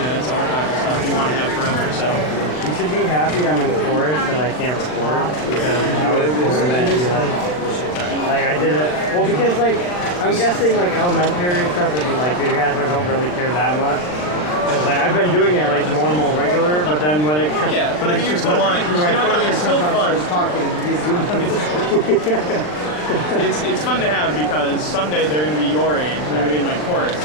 that's archival stuff you want to have forever. So You should be happy I'm in chorus and I can't record because I would be like I did it. Well, because like I'm guessing like elementary and stuff, and like you guys don't really care that much. Because like I've been doing it like normal, regular, but then when it but I mean, you still want it. You know what? It's still fun. It's fun to have because someday they're going to be your age and they're going to be in my chorus, and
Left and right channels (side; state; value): right; late; 40 ms